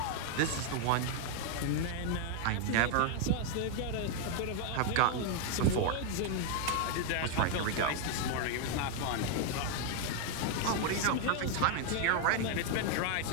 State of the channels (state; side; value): different; both; correlation 0.00